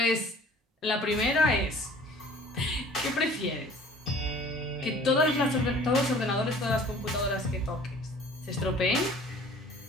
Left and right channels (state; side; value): normal; both; correlation 0.49